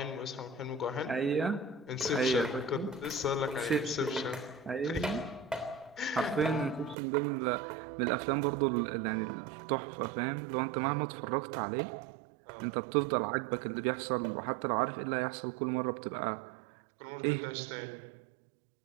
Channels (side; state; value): left; drops out; at 7.0 s